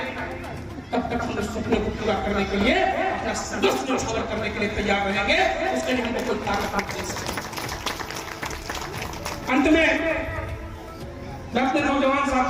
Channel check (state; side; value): identical; both; correlation 1.00